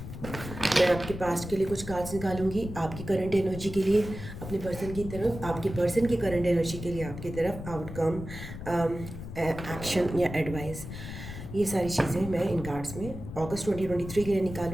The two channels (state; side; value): noise; left; rumble, 10 dB below the sound